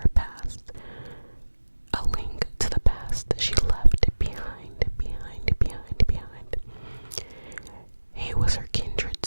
past. A link to the past she left behind. He was her kindred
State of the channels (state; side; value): inverted; both; correlation -1.00